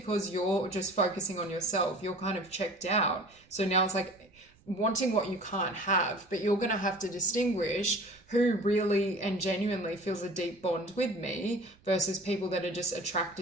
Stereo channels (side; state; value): right; noise; rumble, 30 dB below the sound